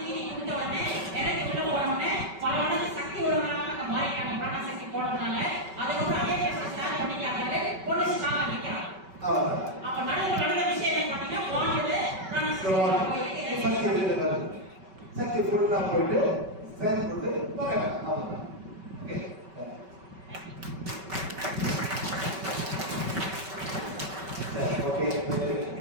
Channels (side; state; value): left; late; 5.2 ms